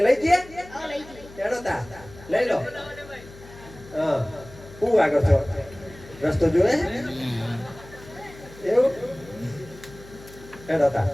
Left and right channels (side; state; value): left; noise; hum, 19 dB below the sound